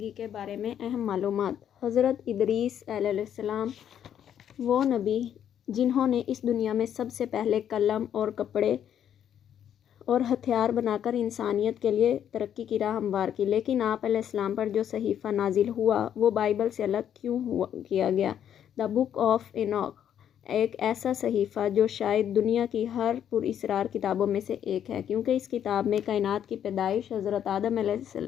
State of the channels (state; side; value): quieter; right; 9.6 dB